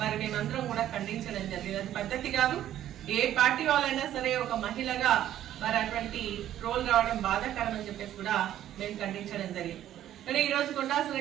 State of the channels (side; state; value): left; quieter; 12.0 dB